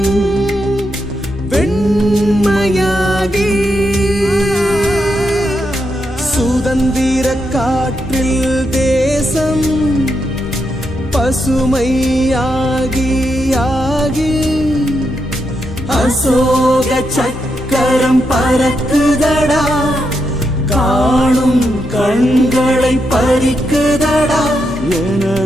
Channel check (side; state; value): both; normal; correlation 0.83